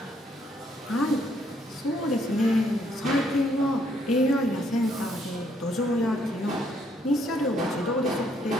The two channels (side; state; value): both; normal; correlation 0.70